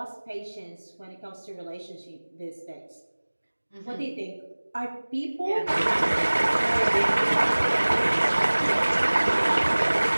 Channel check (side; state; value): both; inverted; correlation -1.00